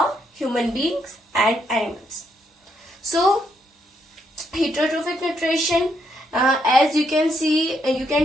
human beings and animals. So heterotrophic nutrition, as you can see, you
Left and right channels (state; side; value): normal; both; correlation 0.76